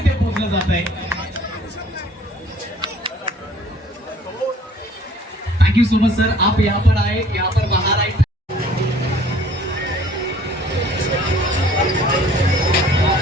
पोहोचलं जात आहे. Thank you so much sir, आप यहाँ पर आए, यहाँ पर बाहर आए.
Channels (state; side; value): normal; both; correlation 0.54